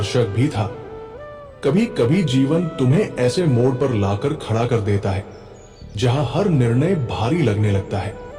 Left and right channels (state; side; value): identical; both; correlation 1.00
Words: भी था। कभी कभी जीवन तुम्हें ऐसे मोड़ पर लाकर खड़ा कर देता है जहां हर निर्णय भारी लगने लगता है।